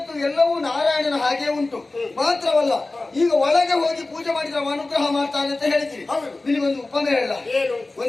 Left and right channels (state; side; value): quieter; right; 3.1 dB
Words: ಎಲ್ಲವೂ ನಾರಾಯಣನ ಹಾಗೆ ಉಂಟು. ಮಾತ್ರವಲ್ಲ, ಈಗ ಒಳಗೆ ಹೋಗಿ ಪೂಜೆ ಮಾಡಿದ್ರೆ ಅವ ಅನುಗ್ರಹ ಮಾಡ್ತಾನೆ ಅಂತ ಹೇಳ್ತೀವಿ. ನಿನಗೊಂದು ಉಪಮೆ ಹೇಳ,